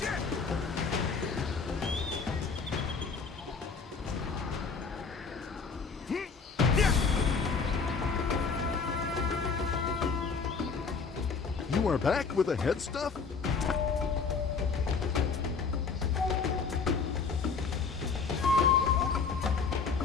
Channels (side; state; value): right; quieter; 5.2 dB